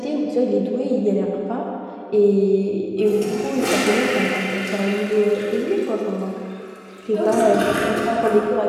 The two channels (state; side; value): identical; both; correlation 1.00